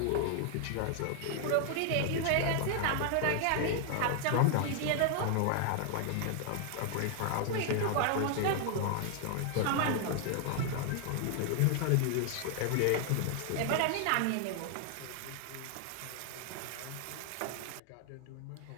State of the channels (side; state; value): both; different; correlation 0.00